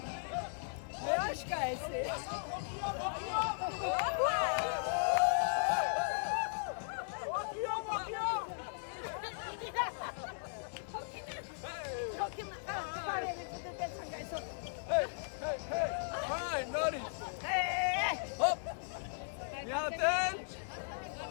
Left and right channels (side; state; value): right; silent; digital silence